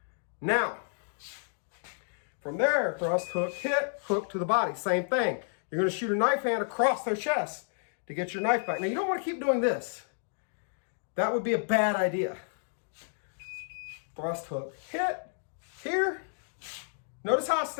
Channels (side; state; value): right; silent; digital silence